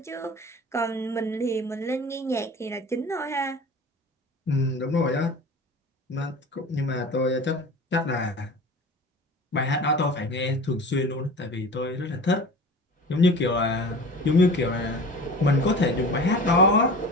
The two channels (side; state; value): both; normal; correlation 0.37